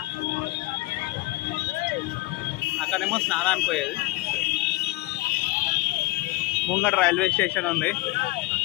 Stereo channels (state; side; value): quieter; right; 20.6 dB